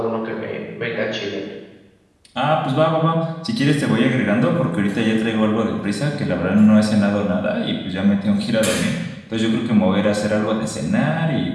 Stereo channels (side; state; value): both; identical; correlation 1.00